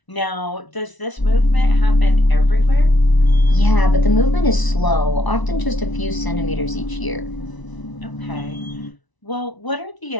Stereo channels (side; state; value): right; late; 1.0 ms